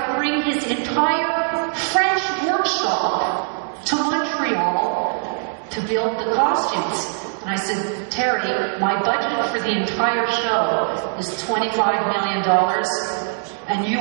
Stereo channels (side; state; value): left; silent; 64 dB below the other